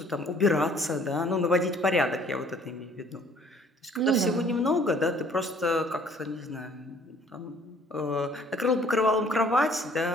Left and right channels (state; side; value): normal; both; correlation 0.57